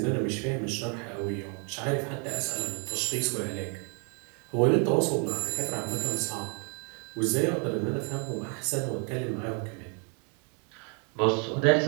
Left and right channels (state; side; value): quieter; left; 38.1 dB